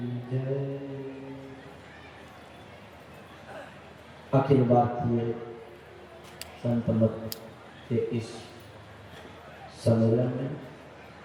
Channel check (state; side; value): identical; both; correlation 1.00